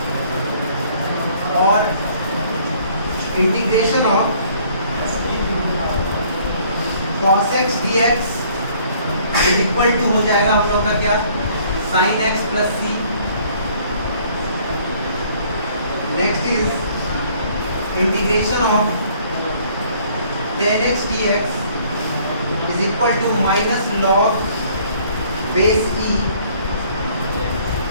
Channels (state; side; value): inverted; both; correlation -0.59